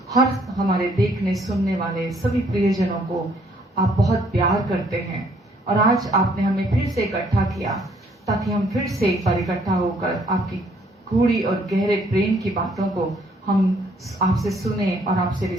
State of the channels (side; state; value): both; normal; correlation 0.65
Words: हर हमारे देखने सुनने वाले सभी प्रियजनों को आप बहुत प्यार करते हैं, और आज आपने हमें फिर से इकट्ठा किया ताकि हम फिर से एक बार इकट्ठा होकर आपकी गूढ़ी और गहरे प्रेम की बातों को हम आपसे सुने और आपसे